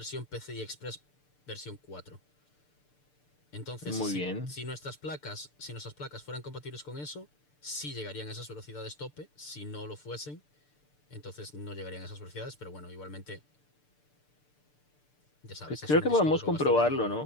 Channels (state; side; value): late; right; 6.8 ms